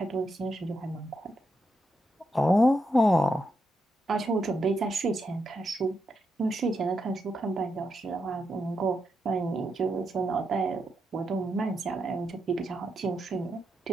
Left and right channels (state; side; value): normal; both; correlation 0.83